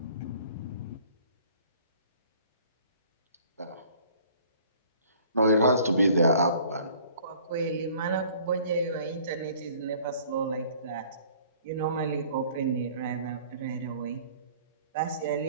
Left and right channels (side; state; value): both; inverted; correlation -0.53